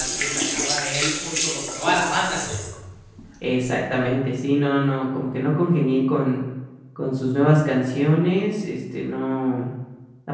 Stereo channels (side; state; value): both; identical; correlation 1.00